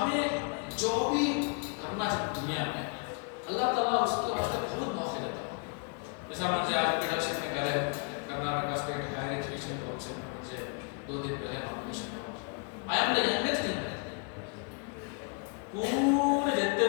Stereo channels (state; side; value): quieter; right; 36.8 dB